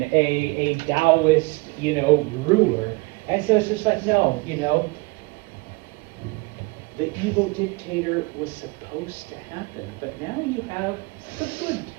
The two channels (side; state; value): left; quieter; 26.3 dB